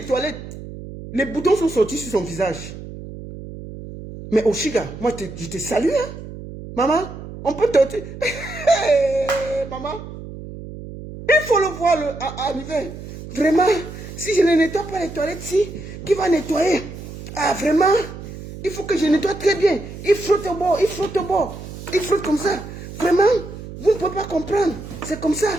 toilettes, les boutons sont sortis sur son visage. Mais Oshiga, moi, je te salue, hein. Maman, on peut te... Maman, il faut le voir arriver. Vraiment, si je ne nettoie pas les toilettes, qui va nettoyer? Ah, vraiment, il faut que je nettoie très bien. Il frotte au bord, il frotte comme ça. Vraiment, vous ne pouvez pas comprendre. C'est comme ça.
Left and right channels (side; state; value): right; noise; hum, 12 dB below the sound